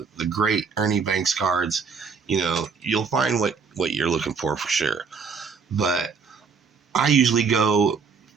great Ernie Banks cards. You'll find what you're looking for sure. But I usually go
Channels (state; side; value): quieter; left; 5.5 dB